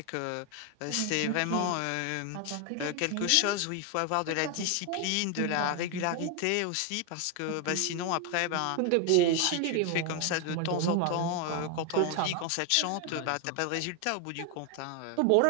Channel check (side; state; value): both; different; correlation 0.01